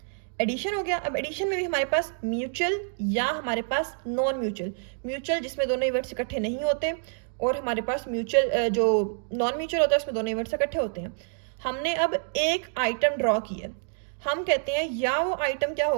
एडिशन हो गया। अब एडिशन में भी हमारे पास म्यूचुअल या हमारे पास नॉन म्यूचुअल, म्यूचुअल जिसमें दोनों इवेंट्स इकट्ठे नहीं होते, और हमारे पास म्यूचुअल जो नॉन म्यूचुअल होता है उसमें दोनों इवेंट्स इकट्ठे होते हैं। हमने अब एक आइटम ड्रॉ किया, हम कहते हैं या वो आइटम क्या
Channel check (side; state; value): left; silent; 60 dB below the other